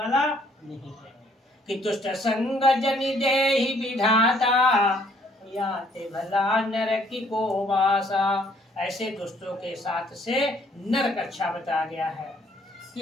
नहीं है। कि दुष्ट संग जनि देहि विधाता, याते भला नरकी को वासा। ऐसे दुष्टों के साथ से नरक अच्छा बता गया है।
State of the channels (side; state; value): both; normal; correlation 0.64